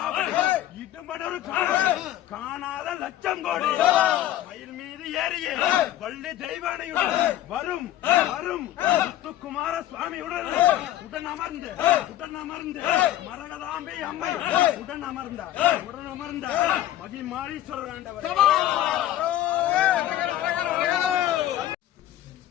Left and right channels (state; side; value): quieter; right; 13.3 dB